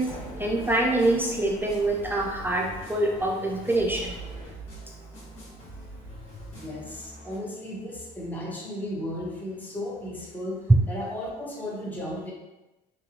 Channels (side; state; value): both; normal; correlation 0.67